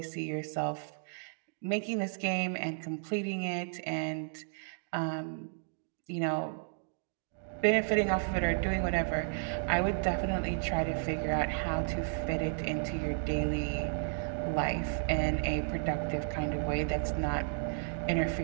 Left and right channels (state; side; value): silent; left; digital silence